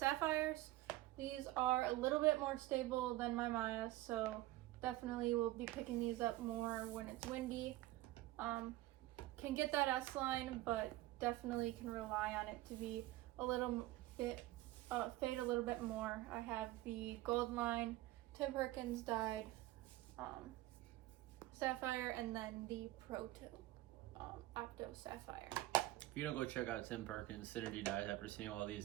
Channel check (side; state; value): left; quieter; 17.2 dB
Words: These are a little bit more stable than my Mayas, so definitely will be picking these up more when it's windy. Can get that S-line, but definitely can rely on it to be a little bit, fade a little bit more. I have the Gold Line, Tim Perkins dyed Sapphire, and then the Proto Outta Sapphire. If you don't go check out Tim Perkins Synergy dyes after seeing all these